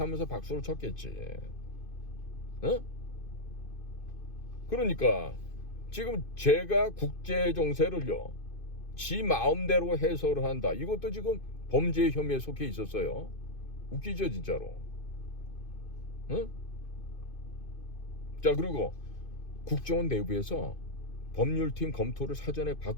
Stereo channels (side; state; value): right; late; 2.5 ms